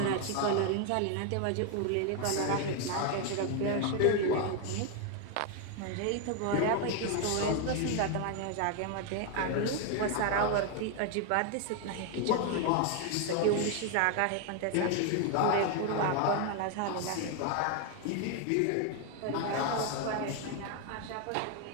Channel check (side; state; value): both; different; correlation 0.01